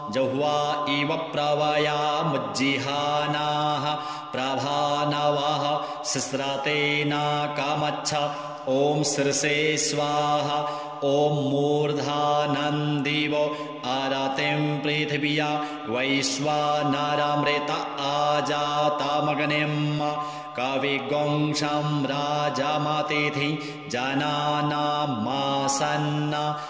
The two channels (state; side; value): identical; both; correlation 1.00